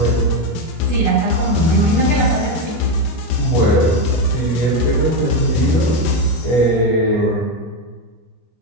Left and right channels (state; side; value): late; right; 25 ms